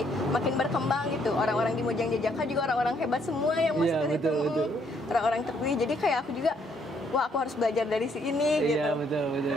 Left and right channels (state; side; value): normal; both; correlation 0.69